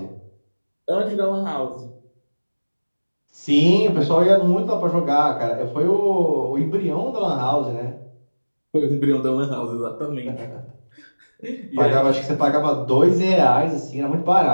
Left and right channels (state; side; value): inverted; both; correlation -1.00